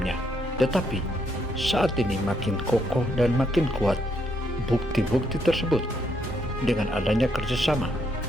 tetapi saat ini makin kokoh dan makin kuat. Bukti-bukti tersebut dengan adanya kerjasama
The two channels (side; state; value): both; normal; correlation 0.75